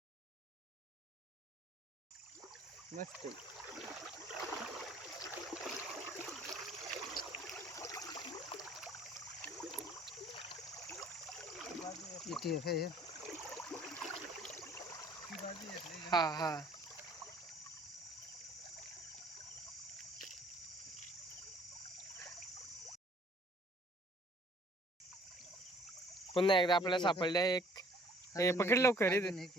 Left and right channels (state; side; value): normal; both; correlation 0.56